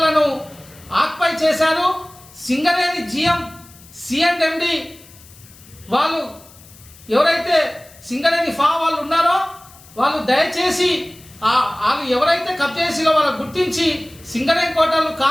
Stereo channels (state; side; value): noise; left; hiss, 23 dB below the sound